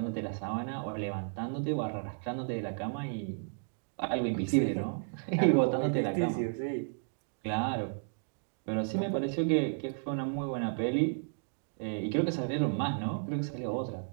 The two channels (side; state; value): left; silent; digital silence